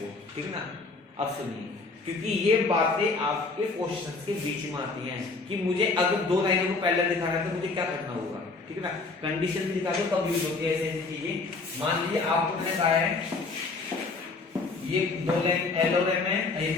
ठीक है ना। अब सुनिए, क्योंकि ये बातें आपके क्वेश्चंस के बीच में आती हैं कि मुझे अगर 2 लाइनों को पैरेलल दिखाना है तो मुझे क्या करना होगा, ठीक है ना। कंडीशन भी दिखा दो कब यूज होती है ऐसी चीजें। मान लीजिए आपको मैंने कहा है ये 2 लाइन L और M है, ये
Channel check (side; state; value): right; quieter; 3.9 dB